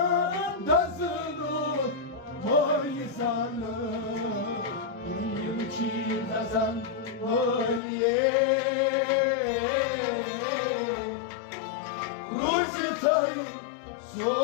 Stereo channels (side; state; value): right; drops out; at 7.8 s